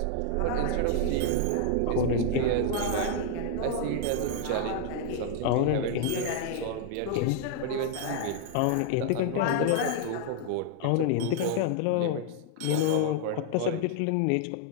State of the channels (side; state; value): both; different; correlation 0.00